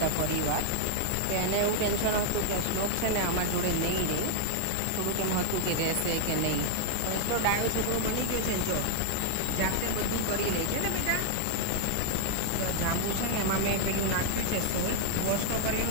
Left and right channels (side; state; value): both; different; correlation 0.00